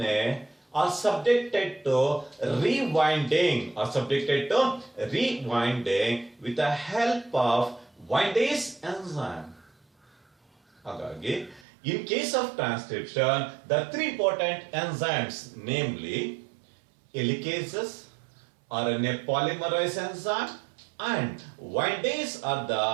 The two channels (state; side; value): drops out; left; at 11.7 s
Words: are subjected to rewinding with the help of windase enzyme. In case of transcription, the three important enzymes, namely helicases, RNA polymerase enzyme, and windase are